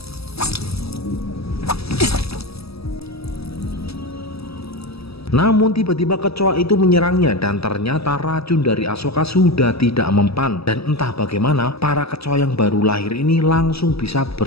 Namun tiba-tiba kecoa itu menyerangnya dan ternyata racun dari Asuka sudah tidak mempan, dan entah bagaimana para kecoa yang baru lahir ini langsung bisa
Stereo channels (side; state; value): right; late; 0.77 ms